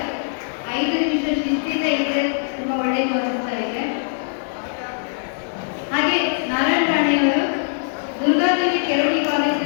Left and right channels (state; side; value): silent; right; 62 dB below the other